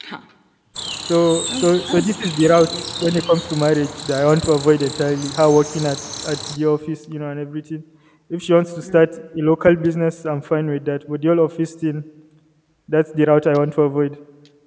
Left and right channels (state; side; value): identical; both; correlation 1.00